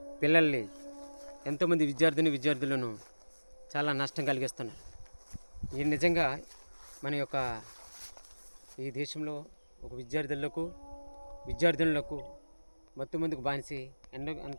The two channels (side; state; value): both; inverted; correlation -1.00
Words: పిల్లల్ని ఎంతోమంది విద్యార్థులను చాలా నష్టం కలిగిస్తున్నారు. ఇది నిజంగా మన యొక్క ఈ దేశంలో ఒక విద్యార్థులకు మత్తుమందుకు బానిసి